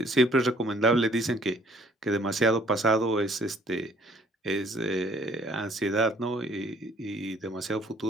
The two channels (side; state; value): both; normal; correlation 0.59